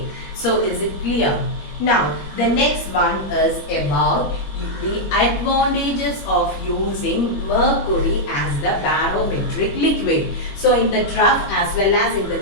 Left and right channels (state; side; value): late; right; 21 ms